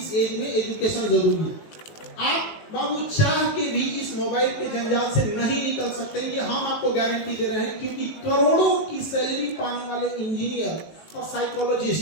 एज में एजुकेशन जरूरी है। आप बाबू चाह के भी इस मोबाइल के जंजाल से नहीं निकल सकते, ये हम आपको गारंटी दे रहे हैं, क्योंकि करोड़ों की सैलरी पाने वाले इंजीनियर और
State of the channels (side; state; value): right; late; 19 ms